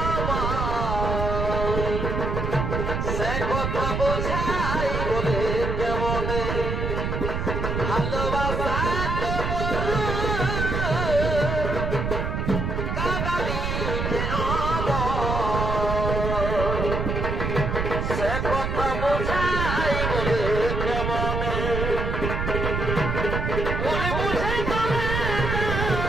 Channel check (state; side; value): noise; right; rumble, 1 dB below the sound